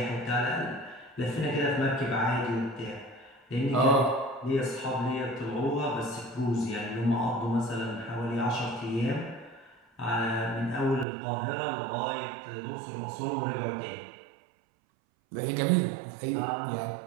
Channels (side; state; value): left; drops out; at 11.1 s